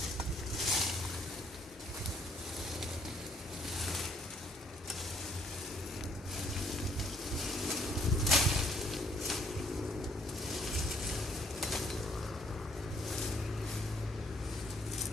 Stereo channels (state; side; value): normal; both; correlation 0.66